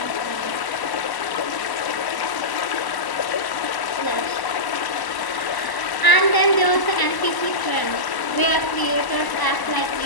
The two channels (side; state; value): right; late; 1.0 ms